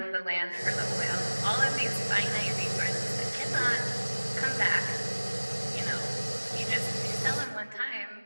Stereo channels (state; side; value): inverted; both; correlation -1.00